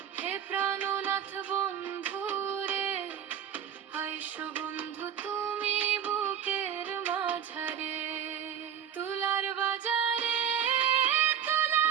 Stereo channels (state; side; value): quieter; left; 8.9 dB